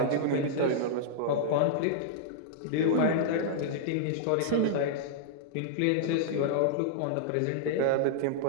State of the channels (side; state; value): both; different; correlation -0.02